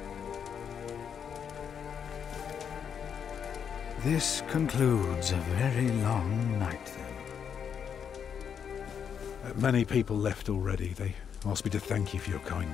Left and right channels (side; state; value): right; quieter; 7.6 dB